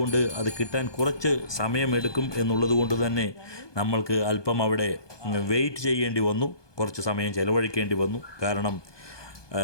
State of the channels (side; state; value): right; late; 1.2 ms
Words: അത് കിട്ടാൻ കുറച്ച് സമയമെടുക്കും എന്നുള്ളത് കൊണ്ട് തന്നെ നമ്മൾക്ക് അല്പം അവിടെ വെയിറ്റ് ചെയ്യേണ്ടി വന്നു, കുറച്ച് സമയം ചിലവഴിക്കേണ്ടി വന്നു. കാരണം